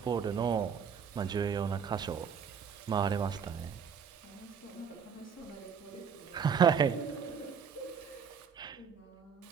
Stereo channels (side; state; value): left; quieter; 6.8 dB